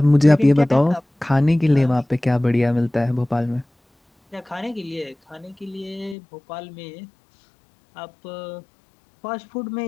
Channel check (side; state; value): right; drops out; at 6.2 s